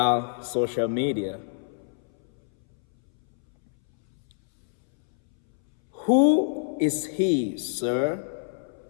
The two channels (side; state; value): right; silent; 60 dB below the other